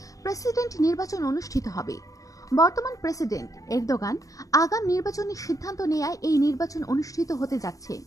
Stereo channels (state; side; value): late; right; 0.16 ms